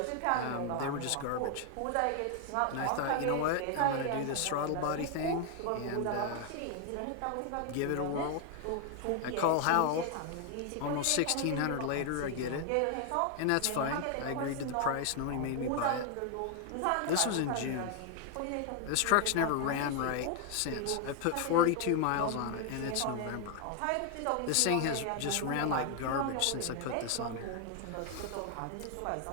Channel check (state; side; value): different; both; correlation 0.00